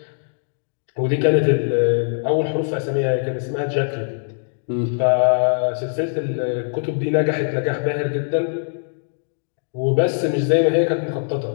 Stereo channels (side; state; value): right; silent; digital silence